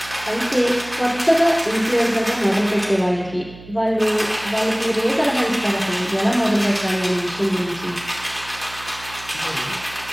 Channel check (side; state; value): right; noise; hum, 18 dB below the sound